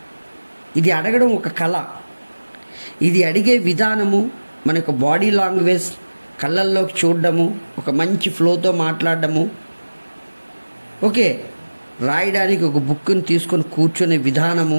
ఇది అడగడం ఒక కళ. ఇది అడిగే విధానము, మన యొక్క బాడీ లాంగ్వేజ్, కళ్ళల్లోకి చూడడము, ఒక మంచి ఫ్లోతో మాట్లాడడము, ఓకే, రాయడానికి ఒక బుక్ని తీసుకొని కూర్చునే విధానము,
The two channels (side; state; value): both; inverted; correlation -1.00